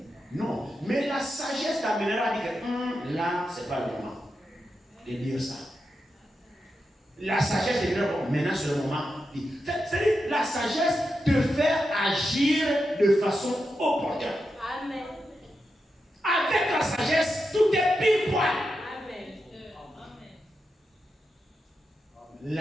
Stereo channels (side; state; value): both; normal; correlation 0.88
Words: Non. Mais la sagesse t'amènera à dire que là, ce n'est pas le moment de dire ça. La sagesse te dira, bon, maintenant c'est le moment. C'est-à-dire, la sagesse te fait agir de façon opportune. Amen. Avec la sagesse, tout est pile poil. Amen.